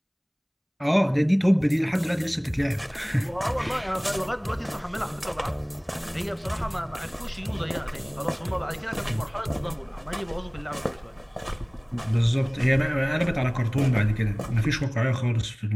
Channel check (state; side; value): identical; both; correlation 1.00